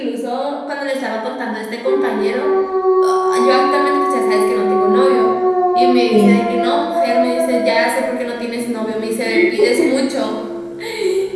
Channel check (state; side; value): identical; both; correlation 1.00